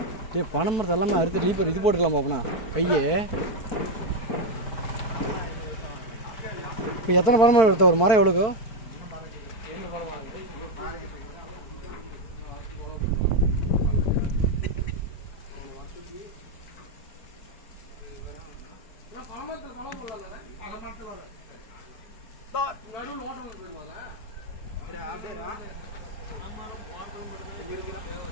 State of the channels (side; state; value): right; late; 4.5 ms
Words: பனை மரத்தை எல்லாமே அறுத்து லீப்பர் இது போட்டுக்கலாமா அப்படின்னா பையே? இப்போ எத்தனை பனை மரம் எடுத்த? ஒரு மரம் எவ்வளோக்கோ?